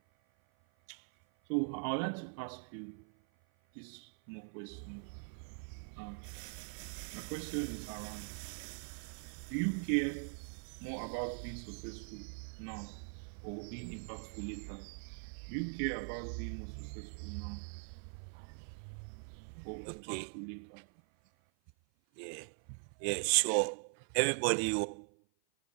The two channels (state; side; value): silent; left; 50 dB below the other